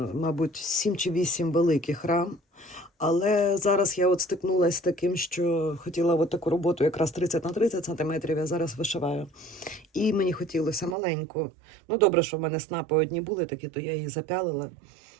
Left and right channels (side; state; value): left; drops out; at 11.0 s